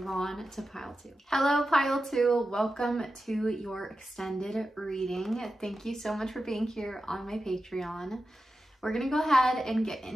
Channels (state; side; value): normal; both; correlation 0.92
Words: on to pile 2. Hello, pile 2. Welcome to your extended reading. Thank you so much for being here on my Patreon. We're gonna go ahead and get